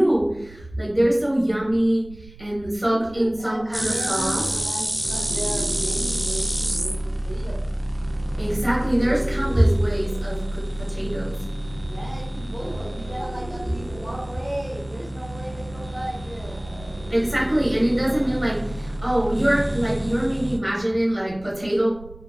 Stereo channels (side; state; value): right; noise; rumble, 19 dB below the sound